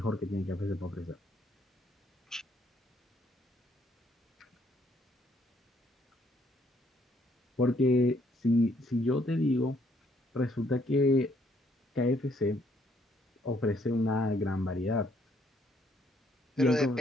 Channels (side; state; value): both; normal; correlation 0.68